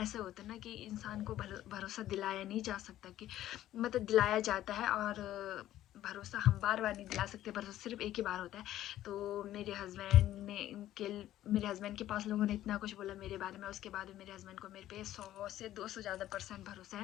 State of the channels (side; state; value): right; quieter; 13.3 dB